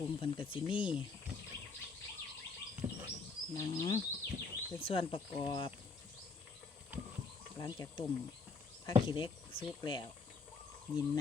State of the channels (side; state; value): right; quieter; 4.4 dB